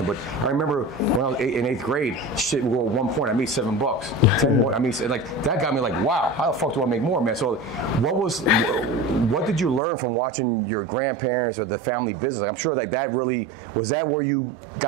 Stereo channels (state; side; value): drops out; left; at 9.8 s